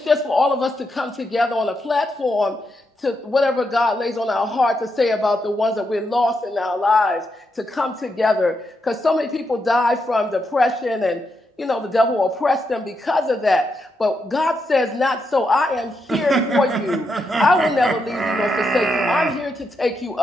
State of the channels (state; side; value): normal; both; correlation 0.83